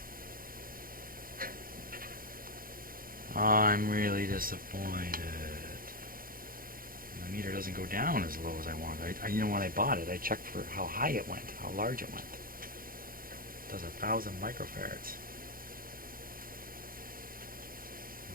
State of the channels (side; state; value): left; late; 0.42 ms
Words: I'm really disappointed. the meter doesn't go down as low as I want. You know, when I bought it, I checked for how high it went, how large it went. It does 1,000 microfarads.